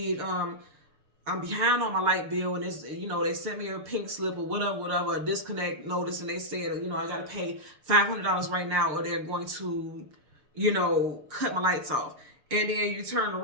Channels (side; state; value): left; late; 6.7 ms